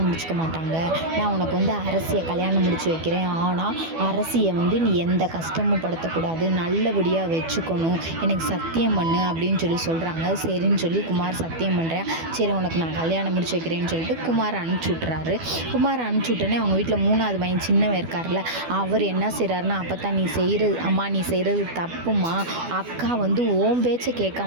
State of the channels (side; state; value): left; late; 12 ms